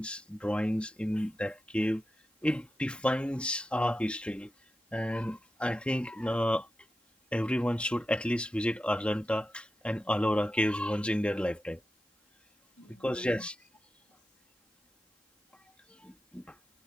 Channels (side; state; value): both; normal; correlation 0.91